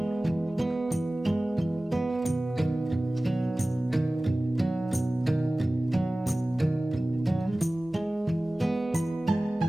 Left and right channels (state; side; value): normal; both; correlation 0.98